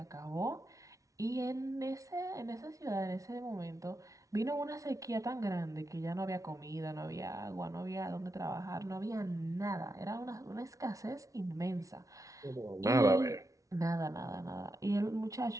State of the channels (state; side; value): late; left; 0.16 ms